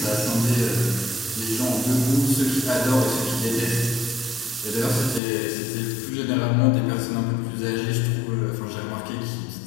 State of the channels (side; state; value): right; drops out; at 5.2 s